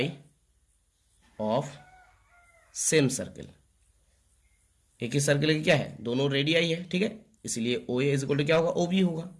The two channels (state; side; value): identical; both; correlation 1.00